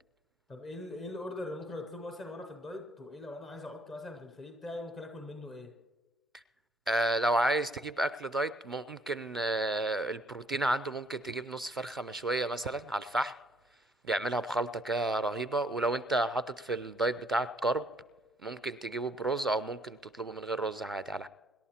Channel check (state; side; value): normal; both; correlation 0.65